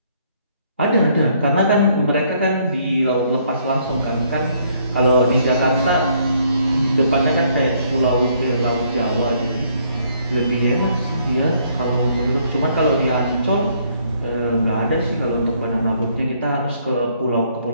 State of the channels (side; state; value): both; inverted; correlation -0.67